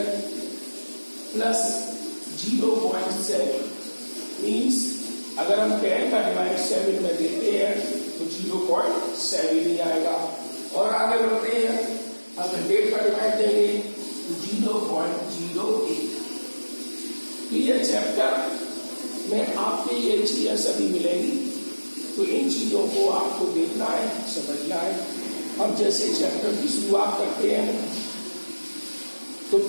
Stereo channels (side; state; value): both; inverted; correlation -1.00